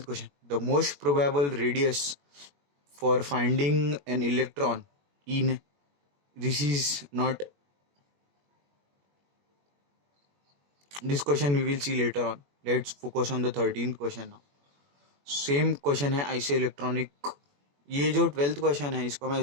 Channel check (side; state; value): left; late; 21 ms